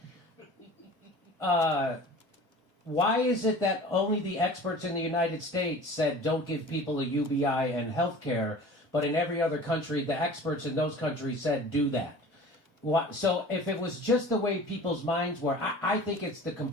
why is it that only the experts in the United States said don't give people a UBI and health care, but in every other country, the experts in those countries said do that? So if it was just the way people's minds were, I think it's the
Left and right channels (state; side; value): normal; both; correlation 0.41